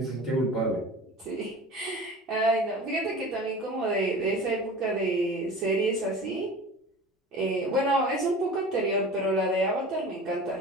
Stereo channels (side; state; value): both; normal; correlation 0.37